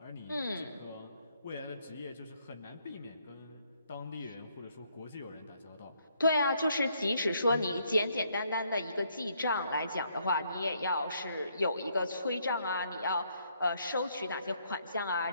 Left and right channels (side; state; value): both; inverted; correlation -0.71